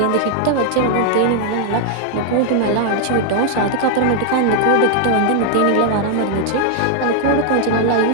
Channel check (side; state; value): both; different; correlation 0.00